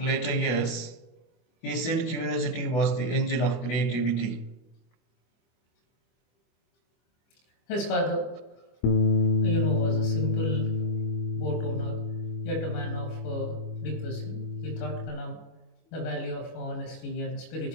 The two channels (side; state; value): right; late; 25 ms